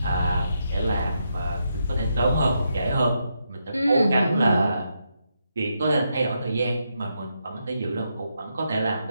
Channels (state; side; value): inverted; both; correlation -0.81